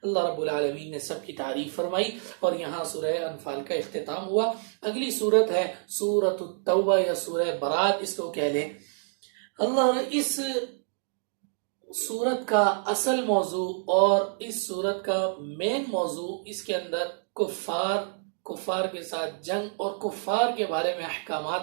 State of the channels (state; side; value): silent; left; digital silence